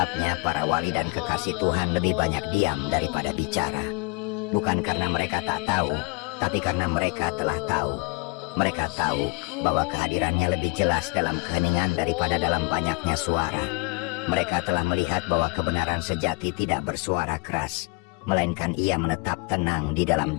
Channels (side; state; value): right; quieter; 28.9 dB